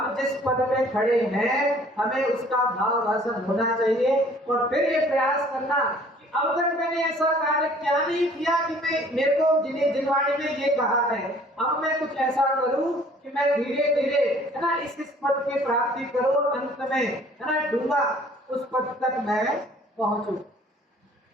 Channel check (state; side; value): normal; both; correlation 0.54